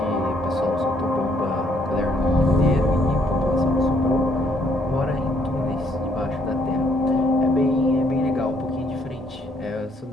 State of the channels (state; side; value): normal; both; correlation 0.68